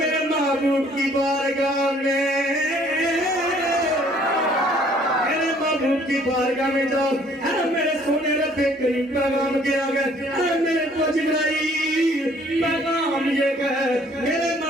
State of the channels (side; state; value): both; normal; correlation 0.60